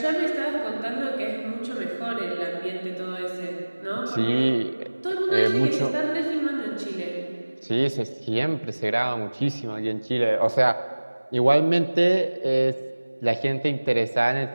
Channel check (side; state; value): both; inverted; correlation -1.00